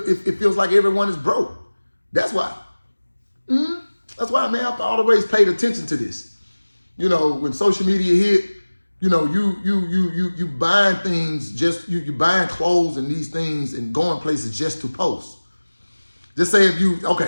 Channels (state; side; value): inverted; both; correlation -1.00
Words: feels like everyone is broke. That's why. That's why, man, I've always paid attention to this. You know, when social media hit, you buying things just you buying clothes and these things and going places just to post. Just say if you